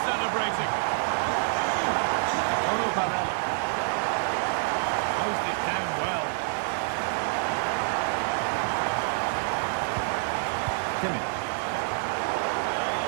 celebrating. Paulo Barella. Closed it down well. Kimmich.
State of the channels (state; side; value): silent; left; 60 dB below the other